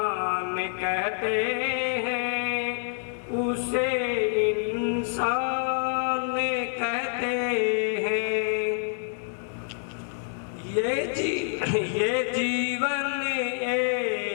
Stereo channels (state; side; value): silent; right; digital silence